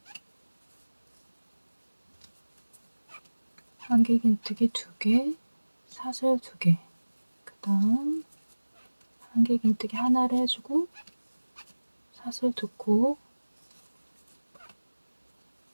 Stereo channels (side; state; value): both; inverted; correlation -1.00